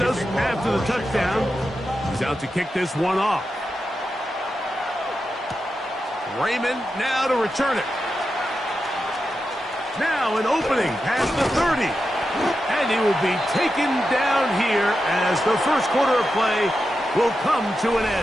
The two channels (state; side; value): normal; both; correlation 0.89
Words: after the touchdown. He's out to kick this one off. Raymond now to return it. Now an opening past the 30. And he will be taken down here as the 1st quarter of play will come to an